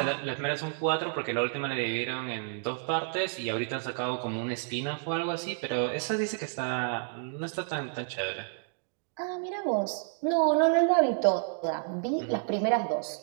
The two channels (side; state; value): left; silent; digital silence